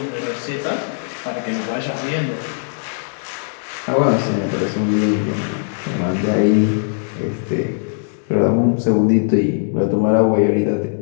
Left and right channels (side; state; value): right; silent; digital silence